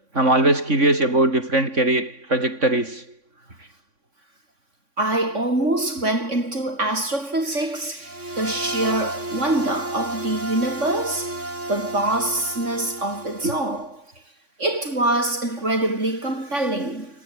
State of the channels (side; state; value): left; late; 3.6 ms